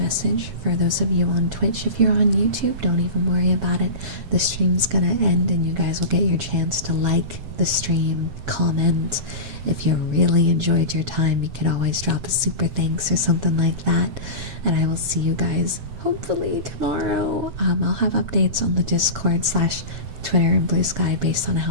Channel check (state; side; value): late; left; 7.2 ms